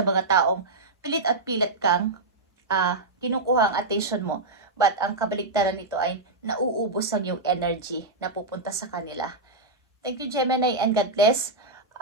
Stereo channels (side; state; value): left; quieter; 3.1 dB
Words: mga taong pilit at pilit kang kinukuha ang attention mo. But ang kabaligtaran nito ay nauubos ang yung energy na pupunta sa kanila. Thank you, Gemini, and God bless.